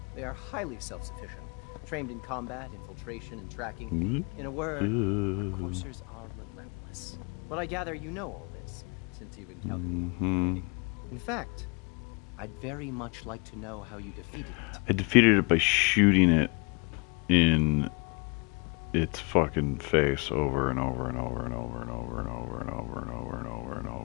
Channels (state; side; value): quieter; right; 32.3 dB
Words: They are highly self-sufficient, trained in combat, infiltration, and tracking. In a word, Coursers are relentless. But I gather you know all this, since you've encountered it. In fact, I'd very much like to know how you defeated it. I defeated it by shooting it in its fucking face over and over and over and over and over and over and over and over and over and